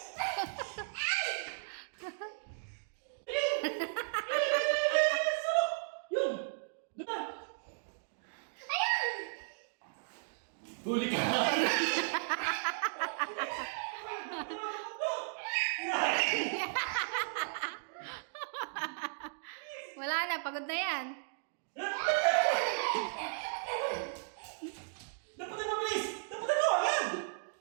Yun! Doon na! Huli ka! Wala na, pagod na yan. Dapat na mabilis! Dapat na agad!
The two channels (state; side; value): silent; left; digital silence